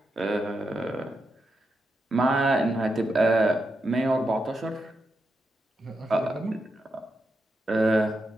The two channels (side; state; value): both; normal; correlation 0.85